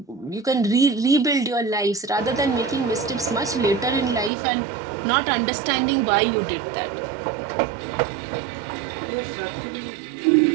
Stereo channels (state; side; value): drops out; left; at 4.3 s